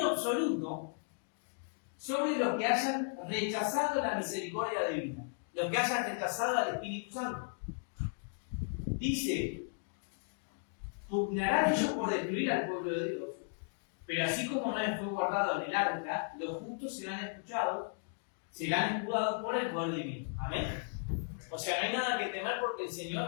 absoluto sobre los que hayan rechazado la misericordia divina, los que hayan rechazado al Espíritu Santo. Dice, pugnarán ellos por destruir al pueblo de Dios, pero así como Noé fue guardado en el arca, los justos serán escuchados por el poder divino. Amén. O sea, no hay nada que temer porque el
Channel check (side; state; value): right; silent; digital silence